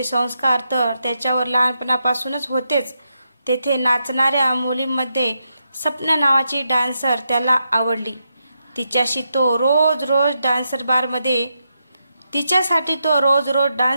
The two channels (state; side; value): inverted; both; correlation -0.84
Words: संस्कार तर त्याच्यावर लहानपणापासूनच होतेच. तेथे नाचणाऱ्या मुलींमध्ये सपना नावाची डान्सर त्याला आवडली. तिच्यासाठी तो रोज